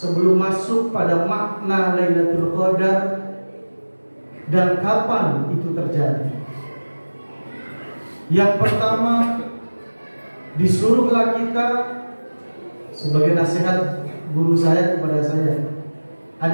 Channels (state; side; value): inverted; both; correlation -1.00